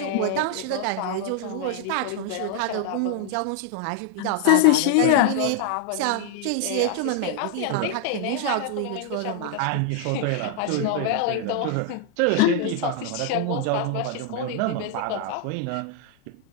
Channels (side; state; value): both; different; correlation 0.00